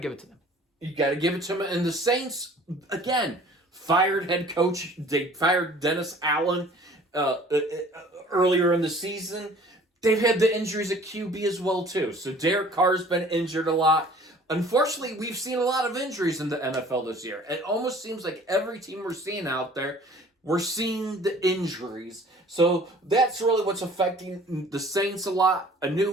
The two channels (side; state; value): both; normal; correlation 0.50